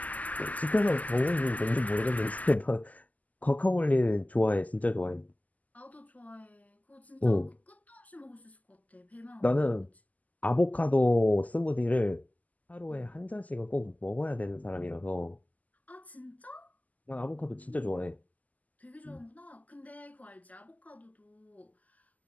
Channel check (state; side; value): late; right; 0.078 ms